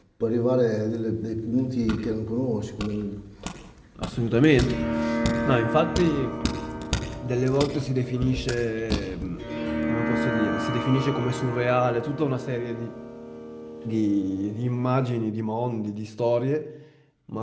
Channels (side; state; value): both; identical; correlation 1.00